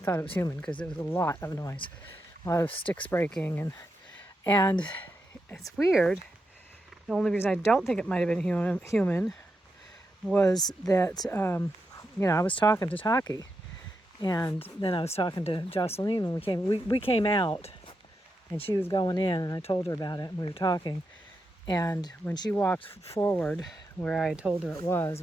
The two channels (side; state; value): both; normal; correlation 0.85